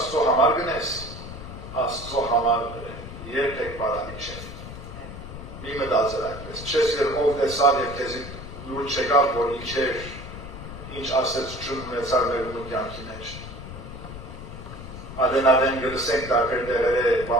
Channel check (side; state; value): left; noise; rumble, 11 dB below the sound